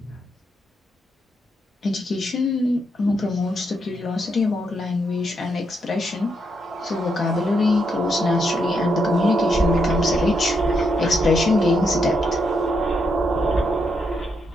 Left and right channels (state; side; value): normal; both; correlation 0.80